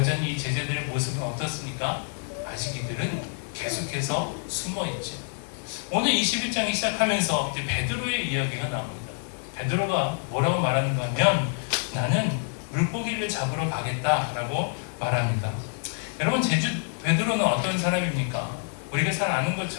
이 제자들의 모습은 어떻습니까? 아직 이들은 계속해서 숨어있죠. 오늘 21장이 시작하면서 이제 베드로의 이야기가 나옵니다. 베드로가 뭐라고 말하는가 하면, 나는 물고기를 잡으러 가겠다라고 말합니다. 여러분, 베드로는 어떤 사람입니까? 우리가 잘 아는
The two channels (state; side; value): silent; right; 60 dB below the other